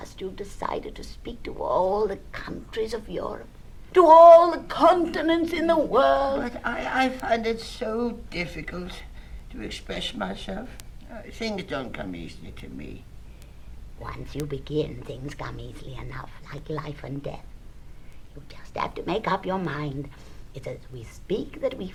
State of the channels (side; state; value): both; identical; correlation 1.00